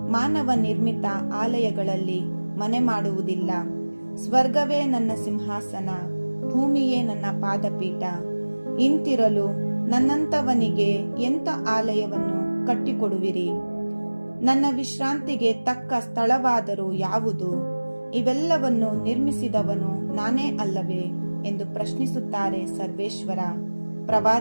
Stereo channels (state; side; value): inverted; both; correlation -1.00